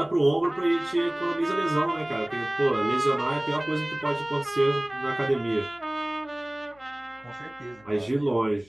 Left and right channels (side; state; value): left; noise; hum, 28 dB below the sound